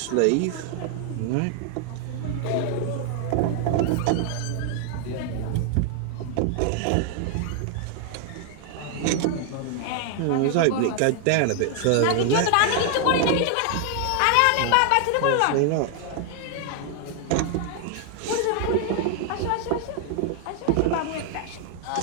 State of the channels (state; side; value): different; both; correlation 0.00